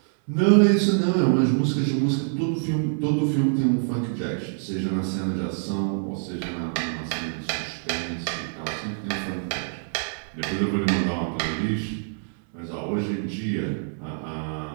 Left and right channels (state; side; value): silent; left; 61 dB below the other